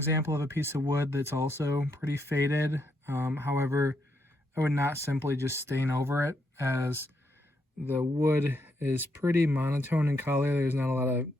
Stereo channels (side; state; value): both; normal; correlation 0.78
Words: of a piece of wood that's also pretty faded. However, I would not simply just stain over it, as the wood is pretty monotone in color. There's not a lot of